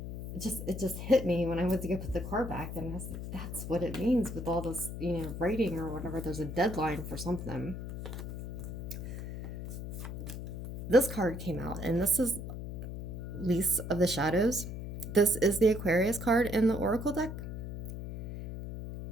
It just hit me when I went to go put the car back, and I was like, that's what it means with all this, you know, writing or whatever. There's a deadline for something. This card came out, and this is Lease of the Shadows. This is the Aquarius card in the Oracle deck.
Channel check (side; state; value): left; noise; hum, 7 dB below the sound